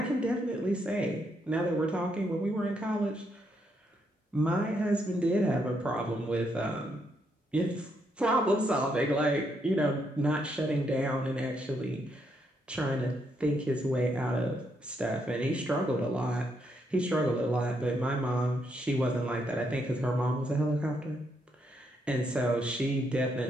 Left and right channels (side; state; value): both; normal; correlation 0.77